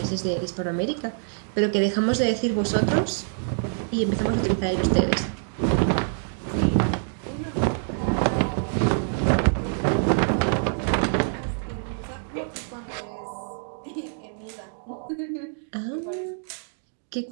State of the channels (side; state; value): left; silent; digital silence